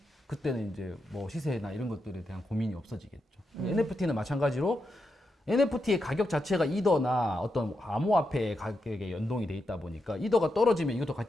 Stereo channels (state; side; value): normal; both; correlation 0.85